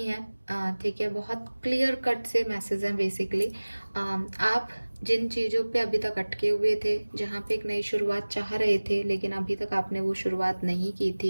है, ठीक है, बहुत क्लियर कट से मैसेज हैं बेसिकली। आप जिन चीज़ों पे अभी तक अटके हुए थे, जहाँ पे एक नई शुरुआत चाह रहे थे, लेकिन अभी तक आपने वो शुरुआत नहीं की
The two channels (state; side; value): inverted; both; correlation -1.00